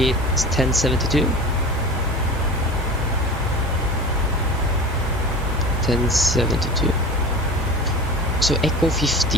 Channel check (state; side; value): normal; both; correlation 0.34